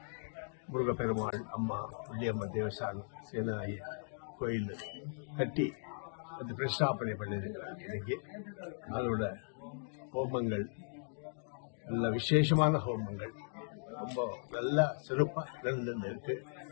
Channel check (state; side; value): silent; right; digital silence